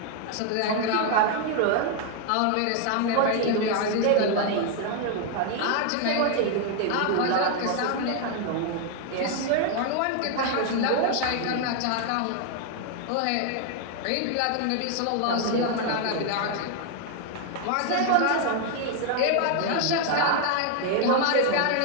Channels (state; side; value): different; both; correlation 0.00